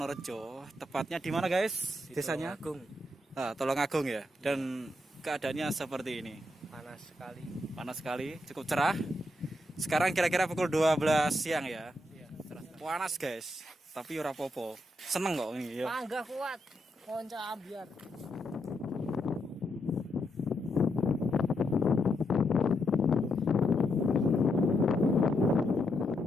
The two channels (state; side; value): normal; both; correlation 0.81